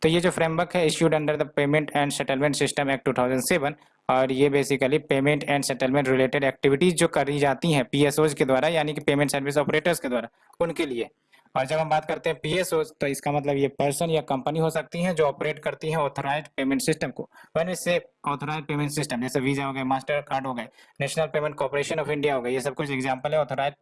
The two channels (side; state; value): both; identical; correlation 1.00